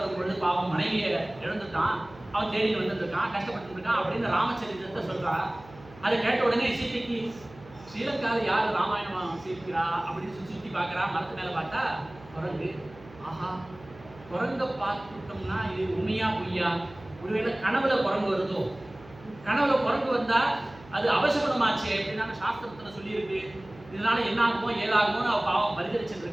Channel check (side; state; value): right; noise; hum, 21 dB below the sound